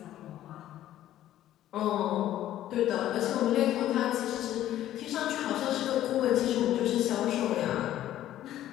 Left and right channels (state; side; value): quieter; right; 12.9 dB